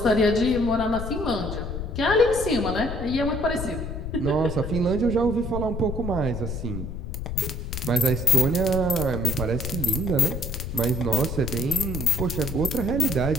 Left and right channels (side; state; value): left; noise; rumble, 6 dB below the sound